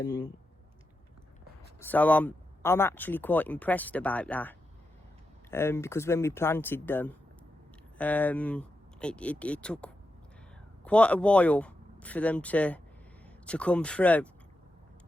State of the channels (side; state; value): both; normal; correlation 0.88